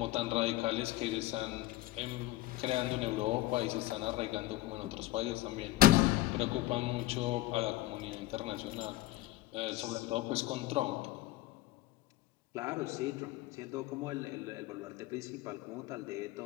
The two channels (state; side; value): quieter; right; 16.4 dB